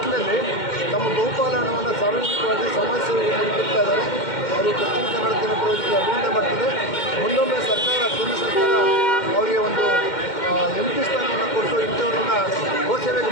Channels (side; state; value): right; late; 2.1 ms